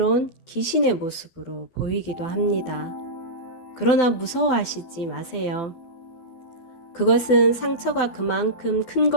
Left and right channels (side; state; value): right; late; 12 ms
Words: 귀신의 모습으로 보이기도 합니다. 그러나 무서워하시지 마세요. 그것은 상처가 그만큼 큰